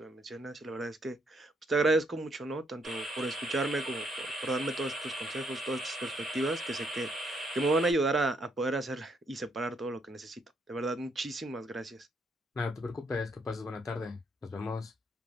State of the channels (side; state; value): both; normal; correlation 0.72